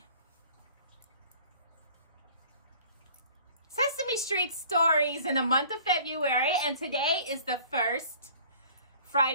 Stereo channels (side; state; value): both; inverted; correlation -0.50